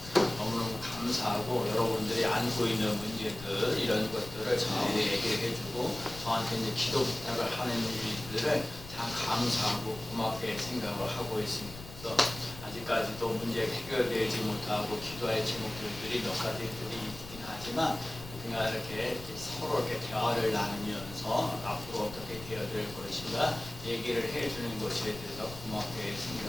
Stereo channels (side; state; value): left; noise; rumble, 14 dB below the sound